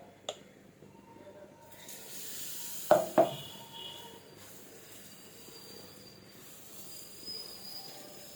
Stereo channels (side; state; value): both; identical; correlation 1.00